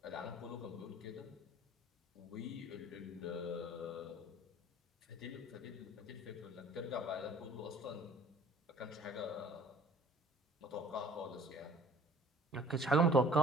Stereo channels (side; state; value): both; normal; correlation 0.50